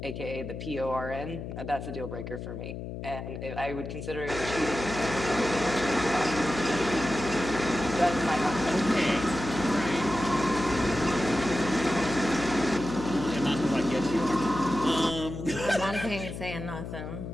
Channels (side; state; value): left; noise; hum, 8 dB below the sound